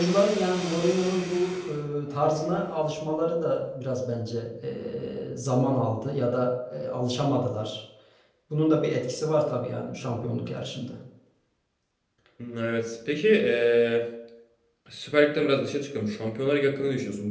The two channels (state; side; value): identical; both; correlation 1.00